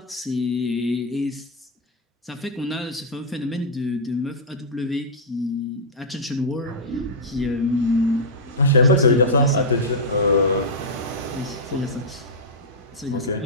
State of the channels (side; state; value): both; normal; correlation -0.08